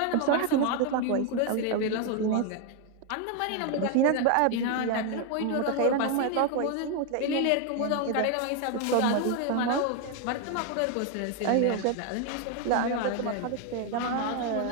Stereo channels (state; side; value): different; both; correlation 0.01